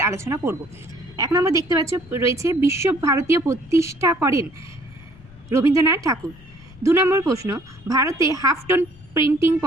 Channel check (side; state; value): left; noise; rumble, 23 dB below the sound